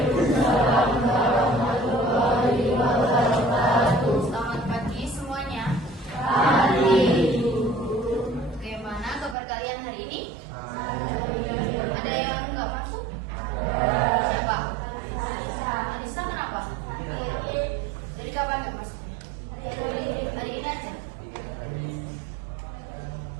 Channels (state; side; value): drops out; left; at 9.3 s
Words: warahmatullahi wabarakatuh. Selamat pagi semuanya. Pagi. Bagaimana kabar kalian hari ini? Ada yang nggak masuk? Siapa? Anissa, kenapa? Jadi kapan nggak masuknya? Hari ini aja.